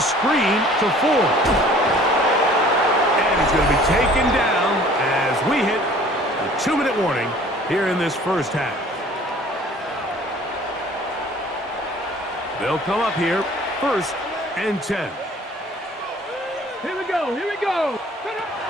to 4. And he's going to be taken down as we hit a 2-minute warning here in this first half. They'll come up here, 1st and 10. Here we go, here we go.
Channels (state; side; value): normal; both; correlation 0.51